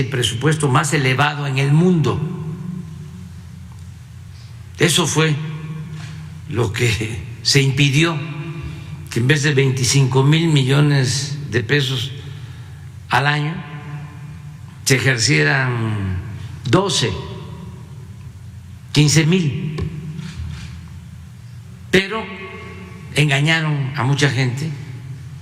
presupuesto más elevado en el mundo. Eso fue lo que se impidió, que en vez de 25,000 millones de pesos al año, se ejercieran 12, 15,000. Pero engañaron a mucha gente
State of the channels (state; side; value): identical; both; correlation 1.00